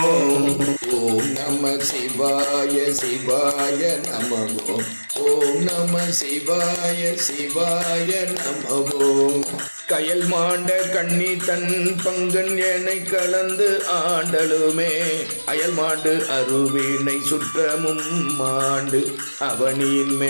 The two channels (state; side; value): inverted; both; correlation -1.00